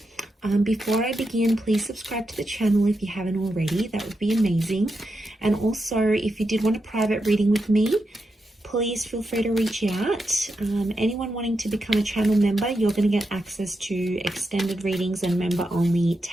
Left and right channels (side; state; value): both; normal; correlation 0.86